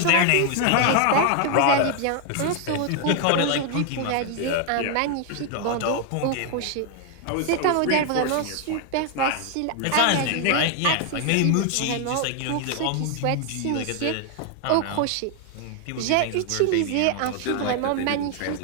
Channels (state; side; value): different; both; correlation 0.00